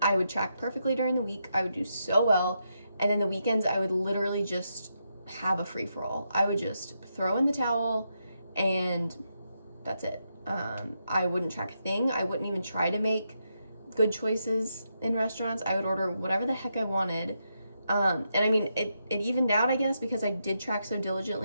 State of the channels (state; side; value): inverted; both; correlation -0.83